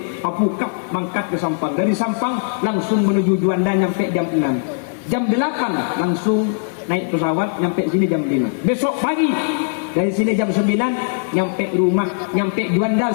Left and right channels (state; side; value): silent; right; digital silence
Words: apukap mangkat ke Sampang. Dari Sampang langsung menuju Juanda nyampe jam 6. Jam 8 langsung naik pesawat nyampe sini jam 5. Besok pagi dari sini jam 9 nyampe rumah, nyampe Juanda